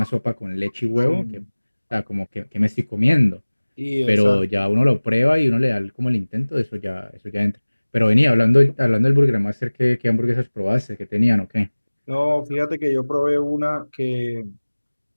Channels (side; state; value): both; inverted; correlation -1.00